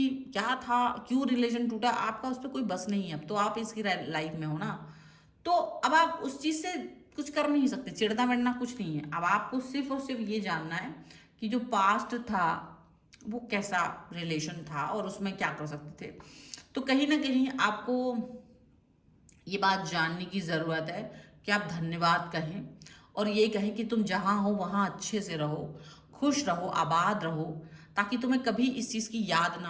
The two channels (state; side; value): identical; both; correlation 1.00